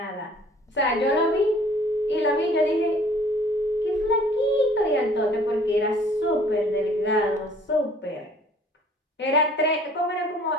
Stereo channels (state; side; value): normal; both; correlation 0.54